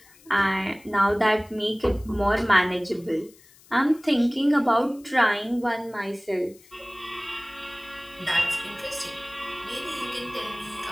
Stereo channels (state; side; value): noise; left; hiss, 26 dB below the sound